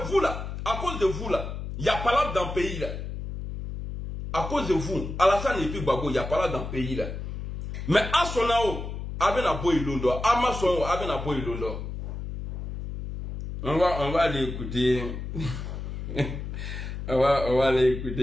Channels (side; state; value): left; noise; hum, 7 dB below the sound